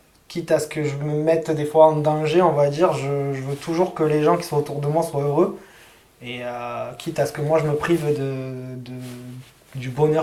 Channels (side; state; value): both; identical; correlation 1.00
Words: quitte à ce que je me mette des fois en danger, on va dire, je veux toujours que les gens qui sont autour de moi soient heureux et quitte à ce que moi je me prive du